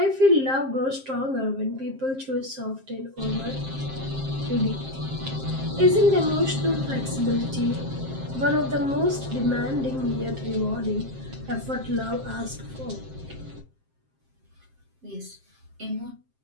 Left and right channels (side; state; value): left; late; 7.5 ms